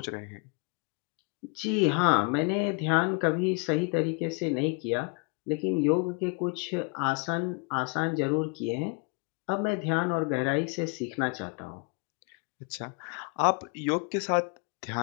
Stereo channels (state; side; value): quieter; right; 33.0 dB